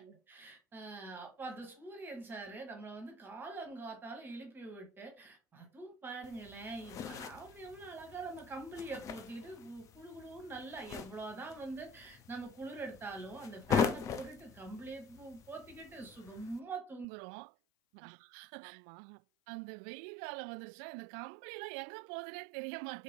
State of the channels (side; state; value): left; drops out; at 17.1 s